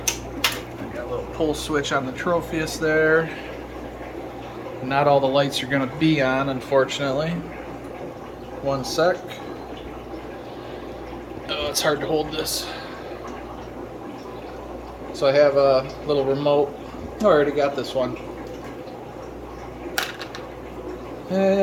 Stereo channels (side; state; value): both; identical; correlation 1.00